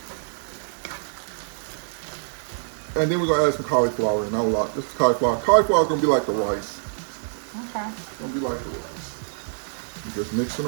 And then we're gonna add some cauliflower in. Not a lot, just cauliflower. Cauliflower is gonna be like the rice. Okay. It's gonna be like the rice. You're just mixing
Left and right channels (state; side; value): silent; left; 62 dB below the other